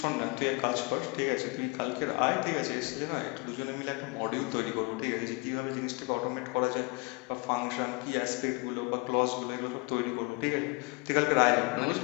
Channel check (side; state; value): right; quieter; 28.7 dB